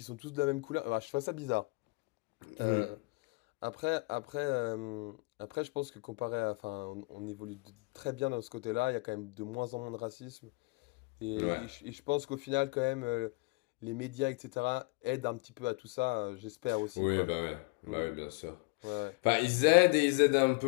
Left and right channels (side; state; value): right; quieter; 27.7 dB